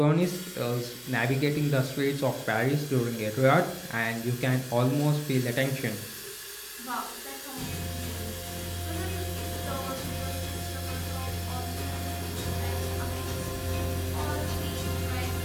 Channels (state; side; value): identical; both; correlation 1.00